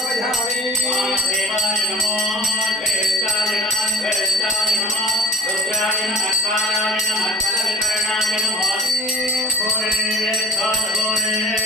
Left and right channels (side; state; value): both; normal; correlation 0.46